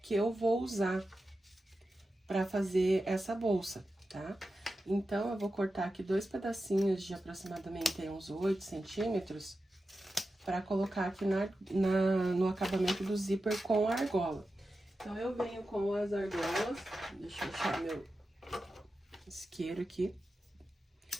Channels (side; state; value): both; normal; correlation 0.92